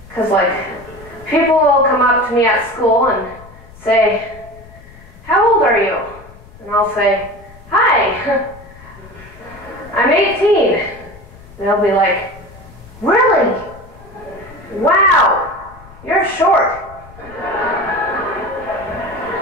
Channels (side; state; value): left; noise; rumble, 21 dB below the sound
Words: because like people will come up to me at school and say, "How old are you?" And I'll say, "Hi, I'm 18." They'll be like, "Really? Wow, you're short."